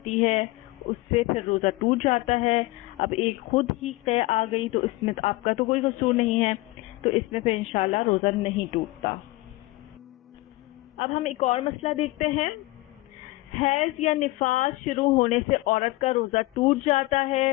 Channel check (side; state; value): right; quieter; 20.2 dB